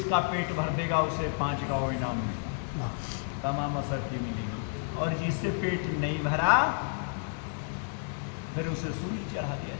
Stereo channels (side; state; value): right; silent; 57 dB below the other